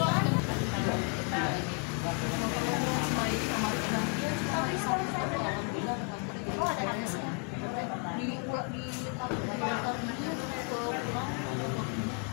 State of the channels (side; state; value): right; quieter; 32.9 dB